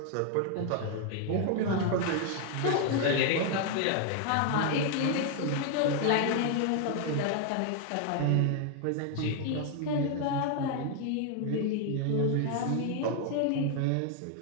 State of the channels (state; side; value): different; both; correlation 0.00